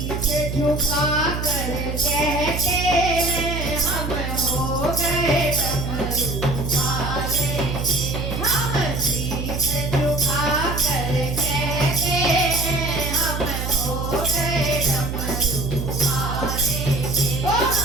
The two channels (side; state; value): right; noise; hum, 3 dB below the sound